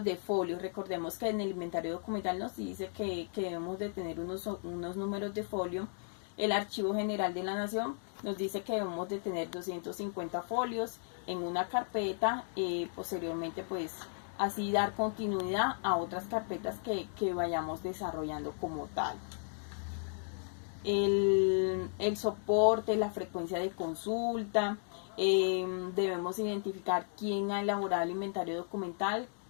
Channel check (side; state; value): right; silent; digital silence